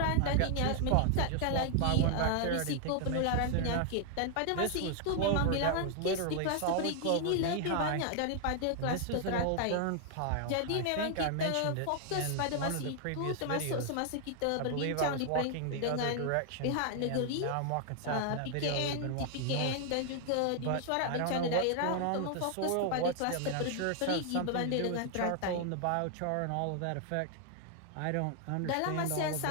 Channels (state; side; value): different; both; correlation 0.00